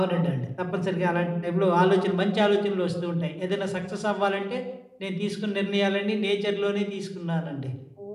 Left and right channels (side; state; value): both; identical; correlation 1.00